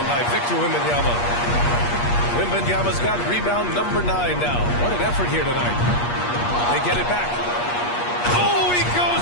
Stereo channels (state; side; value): late; right; 8.4 ms